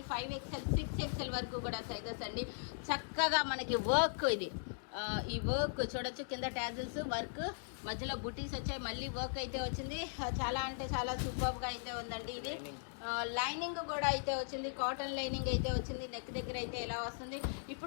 5XL, 6XL వరకు కూడా సైజెస్ అండి. చక్కగా మనకి వర్క్ ఇది. ఈ వర్క్ చూడొచ్చు, కింద ట్యాజిల్స్ వర్క్, మధ్యలో బుటీస్ వచ్చాయి, మళ్ళీ వర్క్ అయితే వచ్చింది. చాలా అంటే చాలా సూపర్గా అయితే ఉందండి. ఇది లైనింగ్ కూడా అయితే వచ్చింది, కాటన్ లైనింగ్ అయితే వచ్చింది. నెక్ దగ్గర అయితే ఎలా వస్తుంది.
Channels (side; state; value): right; silent; digital silence